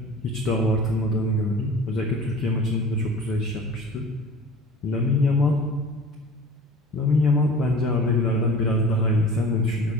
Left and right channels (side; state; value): both; normal; correlation 0.41